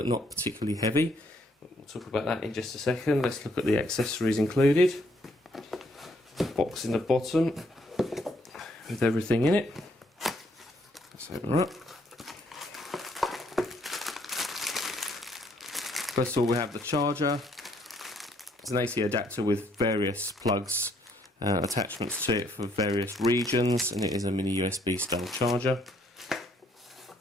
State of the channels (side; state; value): both; normal; correlation 0.68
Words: not particularly heavy. We'll talk about that in just a second. Let's look at the accessories included. Box in the bottom with everything in it. Let's open her up. First of all, we have the charger. It's an AC adapter with various plugs, attachments to it for various regions, and it is a mini USB style charger.